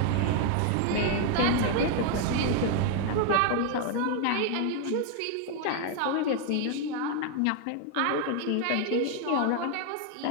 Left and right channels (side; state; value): both; different; correlation 0.01